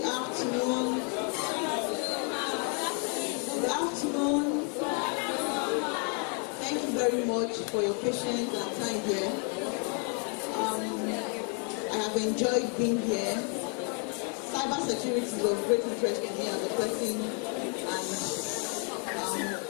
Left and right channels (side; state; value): right; quieter; 39.8 dB